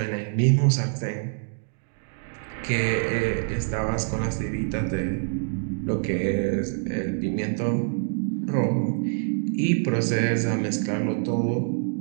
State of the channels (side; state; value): left; silent; 61 dB below the other